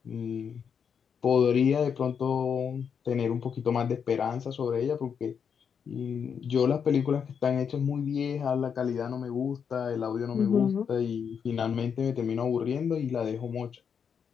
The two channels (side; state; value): right; quieter; 7.0 dB